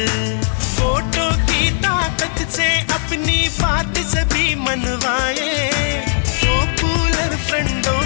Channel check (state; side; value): silent; right; digital silence